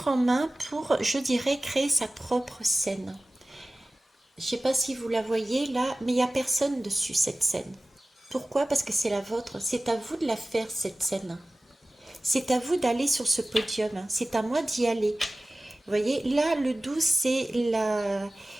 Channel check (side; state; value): both; normal; correlation 0.97